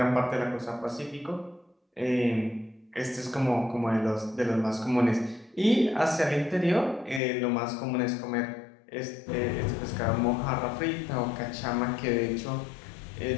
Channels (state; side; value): drops out; right; at 7.2 s